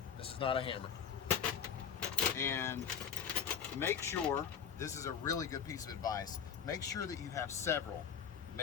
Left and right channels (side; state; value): right; quieter; 7.6 dB